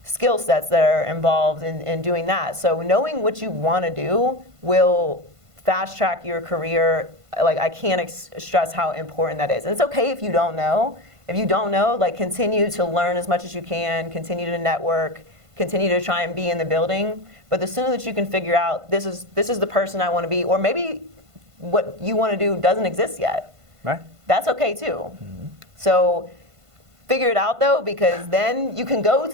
skill sets that are involved in doing that. So knowing what you want to do will fast track your career. Like, I can't stress how important that is. And it's okay if you don't know. If you don't know, like, continue to learn as much as you can, continue to network, continue to try and be in the building. But the sooner that you can figure out, this is the person I want to be, or maybe what you want to do doesn't exist yet. Right. That's okay too. Mm-hmm. So figure it out though, because then you can go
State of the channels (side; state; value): left; late; 1.5 ms